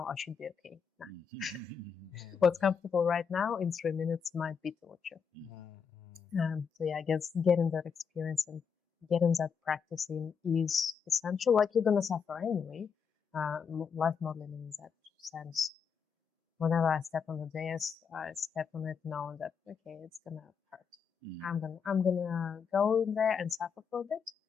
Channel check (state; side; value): quieter; right; 6.5 dB